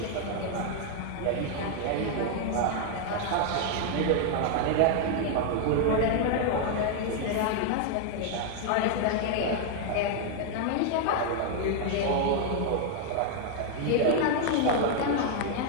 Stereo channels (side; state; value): both; different; correlation 0.00